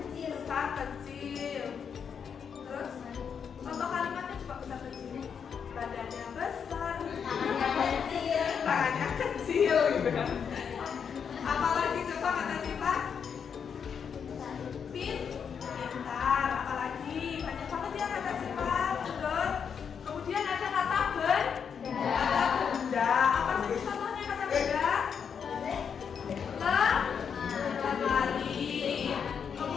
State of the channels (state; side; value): quieter; right; 7.0 dB